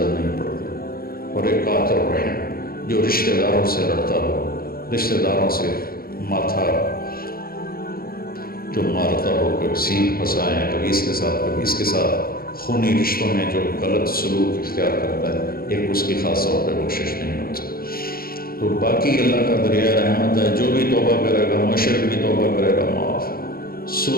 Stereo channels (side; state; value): right; late; 0.43 ms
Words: نہیں پڑتی۔ اور ایک قاطع الرحم، جو رشتہ داروں سے لڑتا ہو، رشتہ داروں سے ماتھا جو مارتا ہو، کبھی سین پھنسائے ہیں، کبھی اس کے ساتھ کبھی اس کے ساتھ، خونی رشتوں میں جو غلط سلوک اختیار کرتا ہے، ایک اس کی خاص طور پہ بخشش نہیں ہوتی۔ تو باقی اللہ کا دریائے رحمت ہے، جو بھی توبہ کرے گا، مشرک بھی توبہ کرے گا معاف،